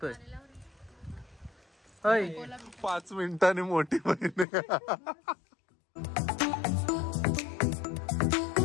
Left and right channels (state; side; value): drops out; right; at 4.5 s